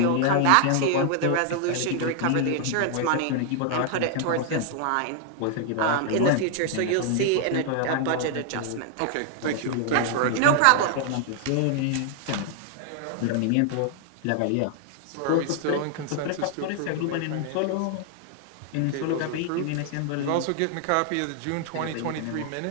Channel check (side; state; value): both; different; correlation 0.00